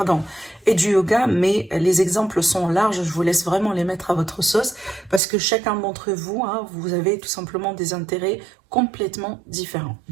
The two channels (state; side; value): drops out; left; at 5.2 s